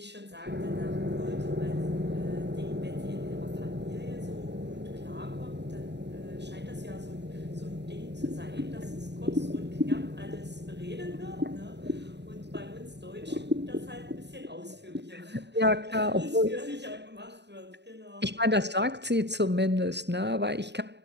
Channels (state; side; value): late; left; 0.50 ms